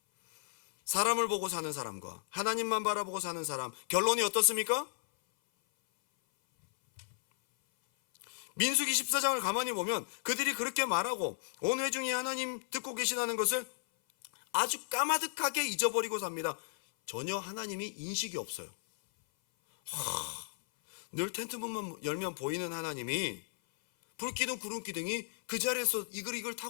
사람을 보고 사는 사람과 하나님만 바라보고 사는 사람, 결론이 어떻습니까? 민수기 14장을 가만히 보면 그들이 그렇게 말하고 온 회중이 하나님 듣고 계시다는 것을 아주 까마득하게 잊어버리고 삽니다. 전혀 하나님이 인식이 없어요. 늘 텐트문만 열면 보이는 하나님이, 불기둥 구름기둥이 그 자리에서 이글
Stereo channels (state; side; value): silent; right; 55 dB below the other